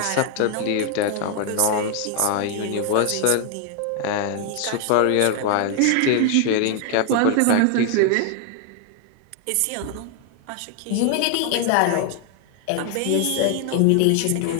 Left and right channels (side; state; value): both; different; correlation 0.00